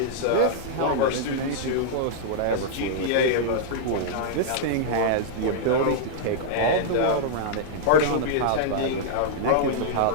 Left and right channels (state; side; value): different; both; correlation -0.02